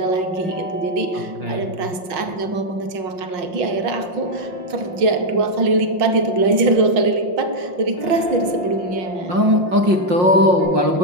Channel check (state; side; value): late; left; 5.6 ms